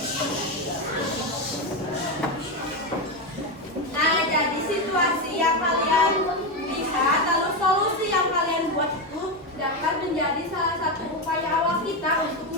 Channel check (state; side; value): normal; both; correlation 0.11